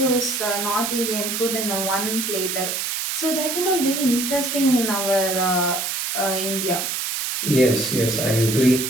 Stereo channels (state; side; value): noise; right; hiss, 2 dB below the sound